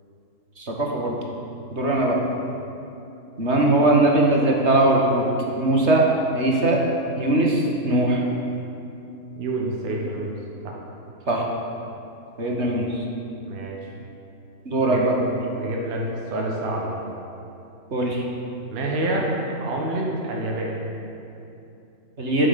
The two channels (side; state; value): left; late; 3.3 ms